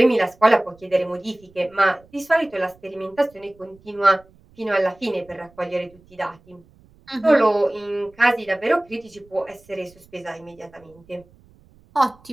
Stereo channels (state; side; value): noise; right; rumble, 28 dB below the sound